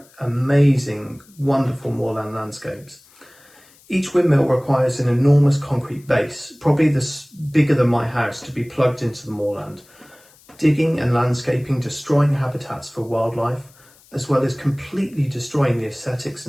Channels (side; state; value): left; noise; hiss, 28 dB below the sound